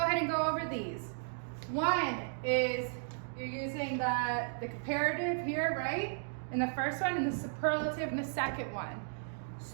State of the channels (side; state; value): left; silent; digital silence